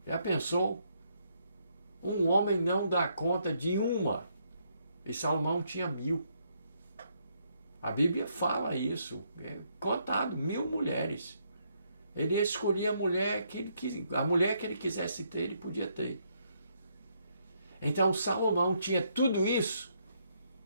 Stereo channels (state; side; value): inverted; both; correlation -0.74